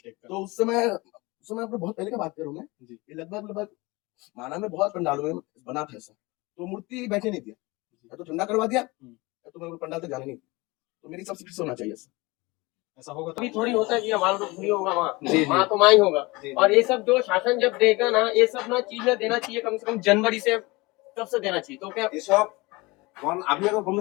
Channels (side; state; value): right; quieter; 23.6 dB